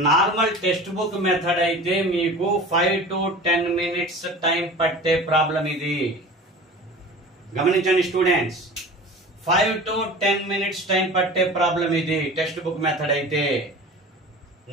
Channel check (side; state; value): both; normal; correlation 0.37